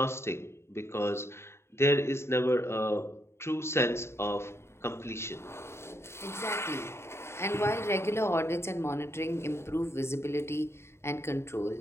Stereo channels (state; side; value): late; right; 0.12 ms